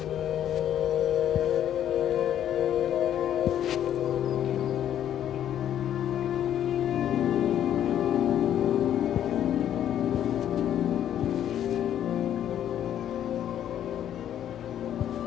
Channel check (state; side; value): quieter; right; 10.5 dB